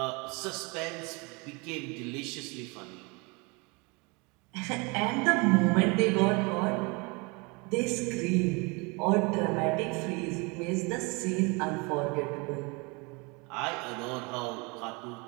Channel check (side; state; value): left; quieter; 28.8 dB